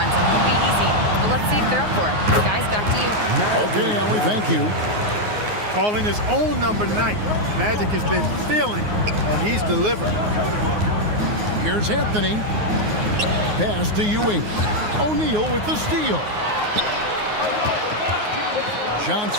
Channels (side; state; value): left; late; 9.5 ms